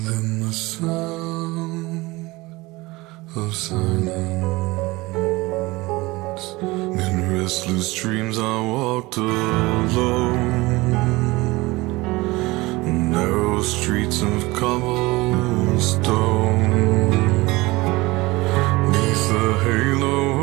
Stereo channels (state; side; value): quieter; left; 21.6 dB